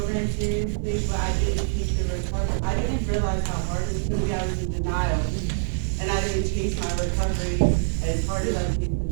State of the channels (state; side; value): silent; left; digital silence